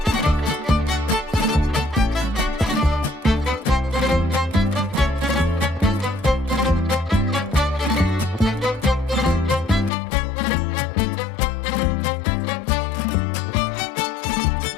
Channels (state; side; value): drops out; right; at 9.9 s